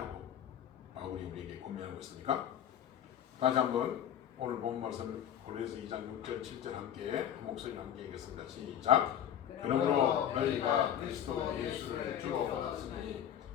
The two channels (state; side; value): quieter; right; 10.0 dB